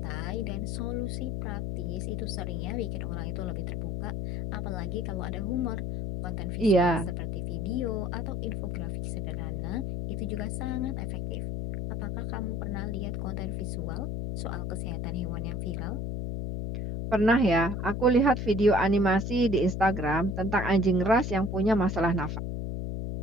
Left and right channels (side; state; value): left; noise; hum, 2 dB below the sound